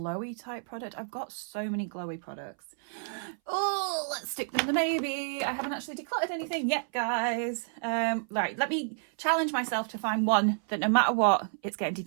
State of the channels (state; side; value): silent; left; 58 dB below the other